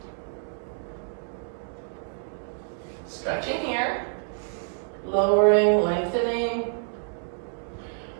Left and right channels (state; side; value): silent; left; digital silence